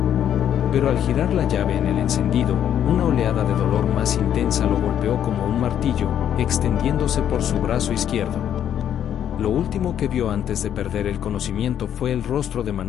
Pero al girar la llave en el encendido, una oleada de dolor más intensa lo golpeó como un martillo, extendiéndose por su brazo izquierdo. Lo último que vio antes de perder el conocimiento fue el rostro de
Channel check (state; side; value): quieter; right; 9.9 dB